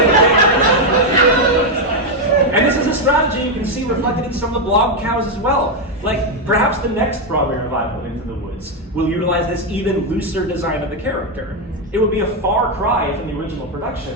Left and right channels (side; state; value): both; normal; correlation 0.04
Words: And this is a strategy you can see reflected in some of the blog cows as well. Like, perhaps the next Broadway revival of Into the Woods will utilize this even looser design of the character. It would be a far cry from the original